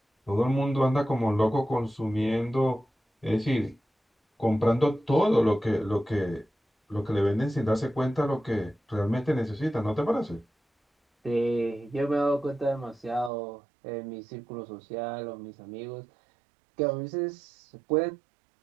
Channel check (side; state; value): left; drops out; at 13.3 s